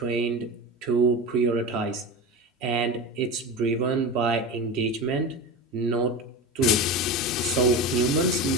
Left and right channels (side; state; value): both; normal; correlation 0.26